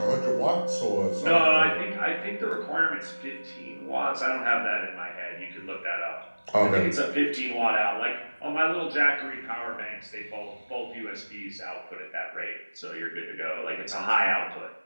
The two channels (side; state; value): both; inverted; correlation -1.00